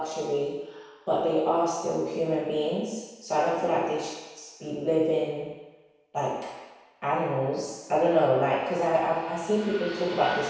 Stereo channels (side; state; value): both; identical; correlation 1.00